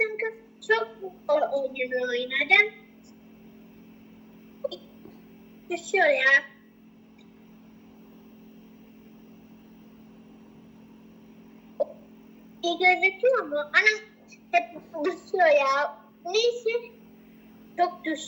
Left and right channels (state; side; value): identical; both; correlation 1.00